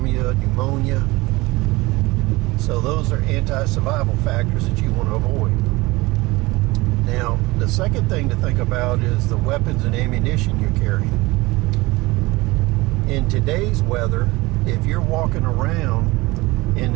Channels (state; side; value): quieter; left; 21.8 dB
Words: pneumonia. So those are anti-survival factors that you want to avoid. Now, the second thing to think about is the weapons and ammunition you're carrying. In today's weather, if you're walking around in